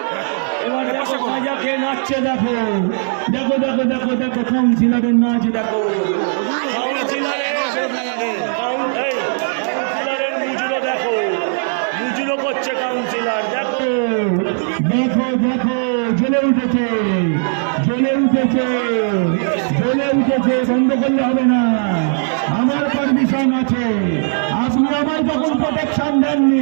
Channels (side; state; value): left; silent; 67 dB below the other